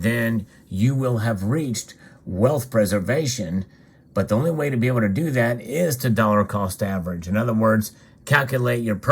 you will have reached wealth preservation. But the only way to be able to do that is to dollar cost average. In other words, calculate your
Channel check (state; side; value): identical; both; correlation 1.00